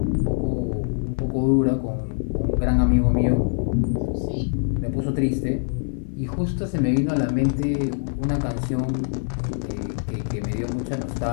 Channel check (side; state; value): right; silent; digital silence